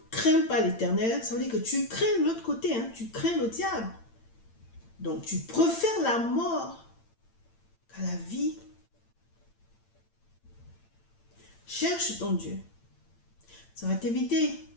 crains pas l'Éternel, ça veut dire que tu crains l'autre côté, tu crains le diable. Donc tu préfères la mort qu'à la vie. Cherche ton Dieu. Ça va t'éviter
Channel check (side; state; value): right; late; 8.8 ms